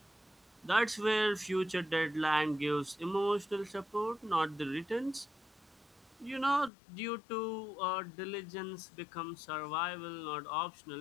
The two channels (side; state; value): right; drops out; at 6.7 s